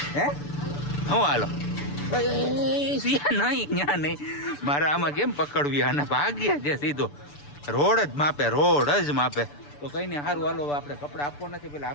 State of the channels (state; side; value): late; right; 6.9 ms